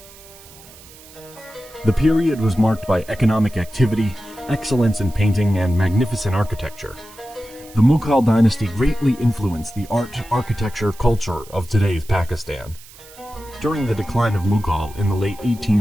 The period was marked by economic activity, excellence in painting, and magnificent architecture. The Mughal dynasty greatly influenced the art, architecture, culture of today's Pakistan. During the decline of Mughal in the late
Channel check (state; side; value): noise; right; hiss, 21 dB below the sound